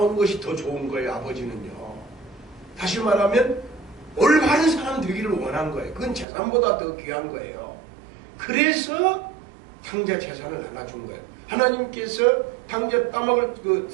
것이 더 좋은 거예요. 아버지는요. 다시 말하면 올바른 사람 되기를 원한 거예요. 그건 재산보다 더 귀한 거예요. 그래서 탕자 재산을 나눠준 거예요. 하나님께서 탕자 따먹을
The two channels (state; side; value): drops out; left; at 6.2 s